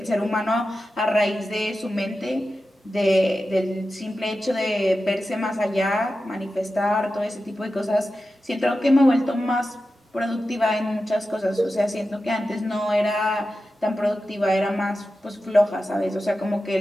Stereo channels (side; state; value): both; normal; correlation 0.92